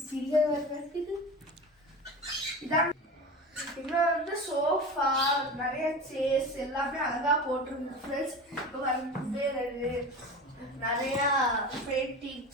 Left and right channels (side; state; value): both; normal; correlation 0.31